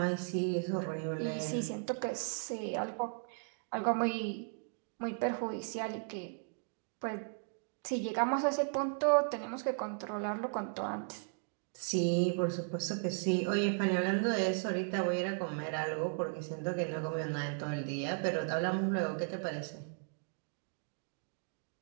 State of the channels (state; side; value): silent; left; 54 dB below the other